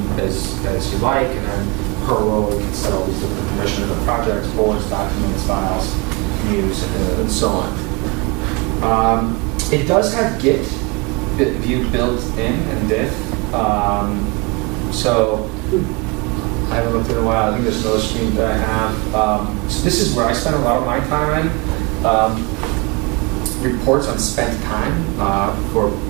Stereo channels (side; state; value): left; quieter; 28.2 dB